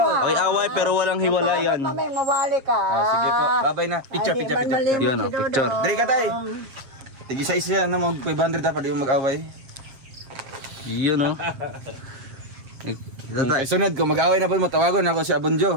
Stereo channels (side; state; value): left; late; 7.7 ms